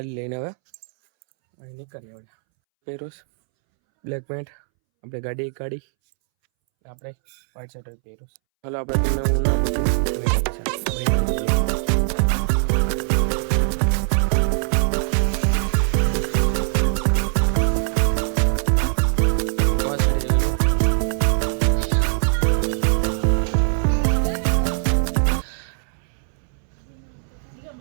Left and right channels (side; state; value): left; silent; 64 dB below the other